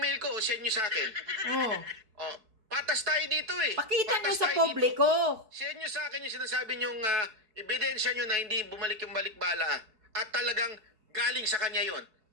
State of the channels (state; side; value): late; left; 4.7 ms